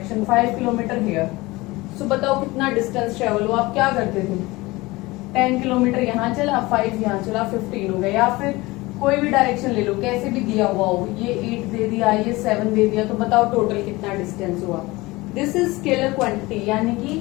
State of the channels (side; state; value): right; quieter; 21.4 dB